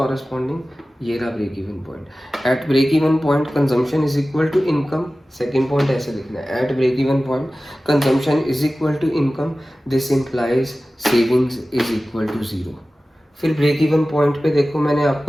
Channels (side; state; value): both; normal; correlation 0.96